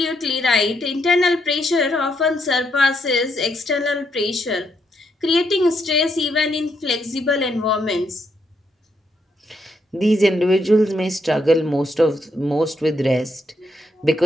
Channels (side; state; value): both; normal; correlation 0.77